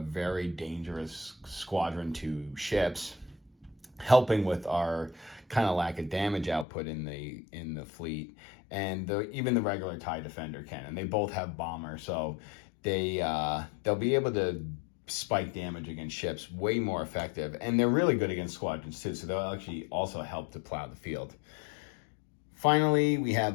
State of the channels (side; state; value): right; drops out; at 6.7 s